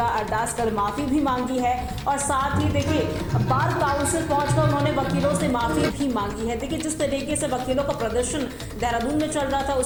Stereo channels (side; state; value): both; identical; correlation 1.00